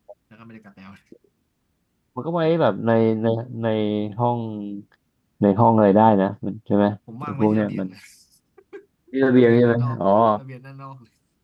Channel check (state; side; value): identical; both; correlation 1.00